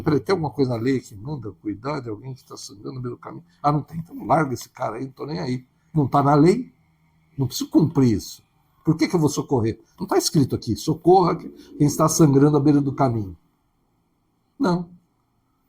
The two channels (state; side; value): identical; both; correlation 1.00